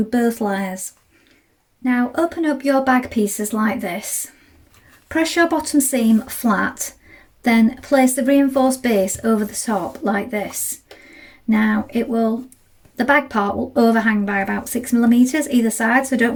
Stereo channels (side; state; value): both; identical; correlation 1.00